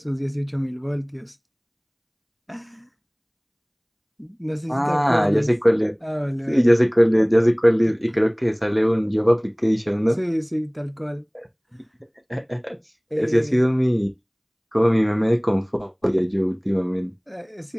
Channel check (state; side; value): identical; both; correlation 1.00